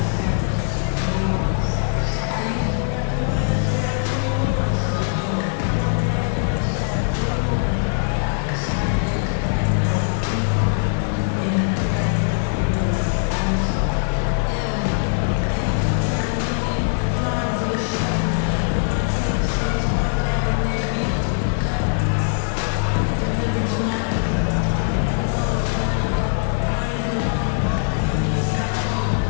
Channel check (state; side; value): silent; right; digital silence